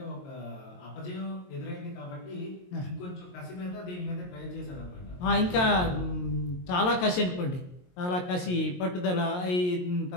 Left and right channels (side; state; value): right; late; 22 ms